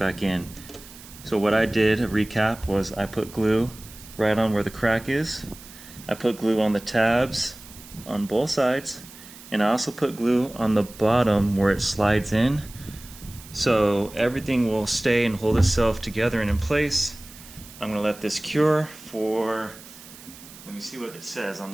in. So what I did, a recap, was I put glue right on where the crack is. I put glue on the tabs on both sides, and I also put glue on the bottom where it slides in. So everything will stay and hold itself together and in place. I'm going to let this cure for, let me see what it says on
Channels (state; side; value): noise; right; hiss, 18 dB below the sound